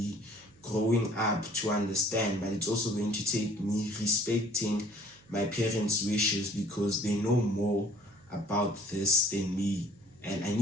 growing up to understand, but it's also going to take me respecting my parents' wishes, because they know more about this than me. And I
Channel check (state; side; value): noise; right; hum, 29 dB below the sound